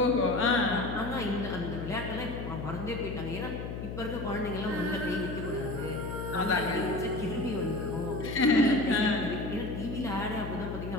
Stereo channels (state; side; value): noise; left; hum, 6 dB below the sound